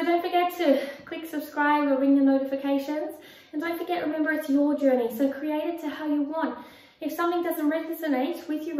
don't forget to click subscribe or ring the notifications. And don't forget, remember, it's your journey. So create it to how you want. If something doesn't resonate with you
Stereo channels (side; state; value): both; identical; correlation 1.00